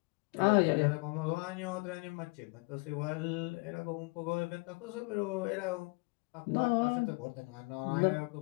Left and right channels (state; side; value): quieter; right; 29.1 dB